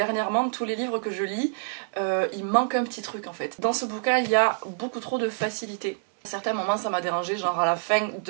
tous les livres que je lis, il manque un petit truc en fait. Dans ce bouquin il y a beaucoup trop de facilité. À certains moments ça m'a dérangé, genre à la fin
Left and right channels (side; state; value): left; silent; digital silence